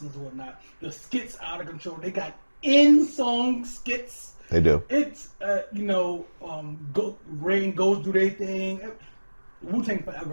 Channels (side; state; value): both; inverted; correlation -1.00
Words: and whatnot. The skits out of control. They got in-song skits. They do. It's Rain goes do their thing. Wu-Tang